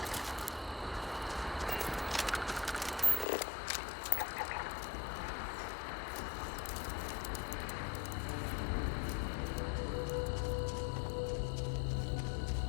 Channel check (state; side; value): drops out; right; at 3.2 s